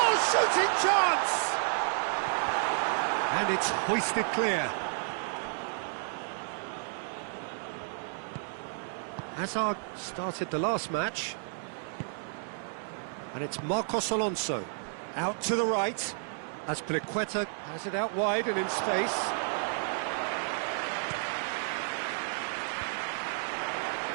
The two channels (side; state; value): left; silent; 57 dB below the other